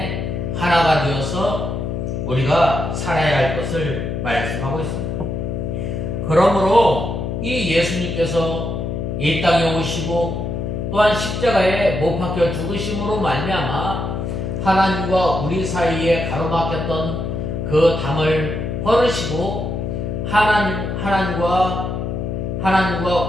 하나가 되어서 우리가 살아야 할 것을 말씀하고 있습니다. 그러므로 이 예수님께서 이 땅에 오시고 또한 십자가에 못 박혀 죽으심으로 말미암아 하나님과 우리 사이에 가로막혔던 그 담을 헐으시고 하나님과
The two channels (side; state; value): left; noise; hum, 3 dB below the sound